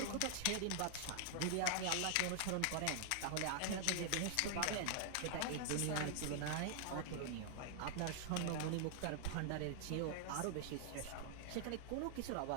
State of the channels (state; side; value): different; both; correlation -0.01